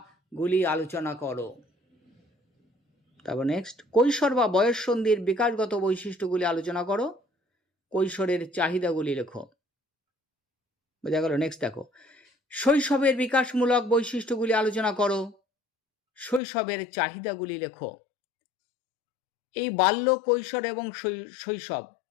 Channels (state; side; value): drops out; right; at 16.4 s